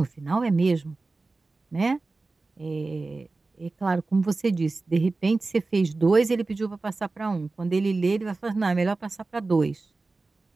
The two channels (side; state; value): left; quieter; 3.5 dB